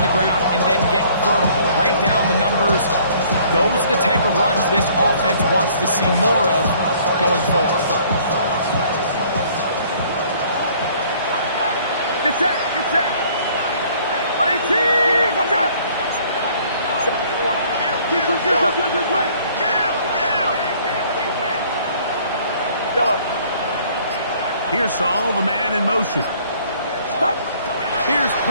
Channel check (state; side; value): inverted; both; correlation -0.58